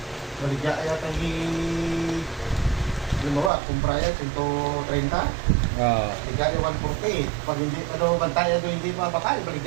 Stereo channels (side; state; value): left; drops out; at 3.5 s